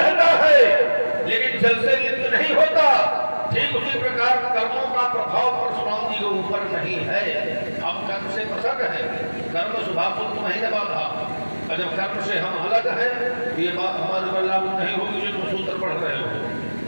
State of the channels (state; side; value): inverted; both; correlation -1.00